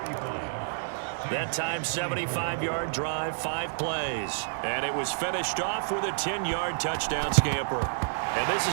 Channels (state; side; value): silent; left; digital silence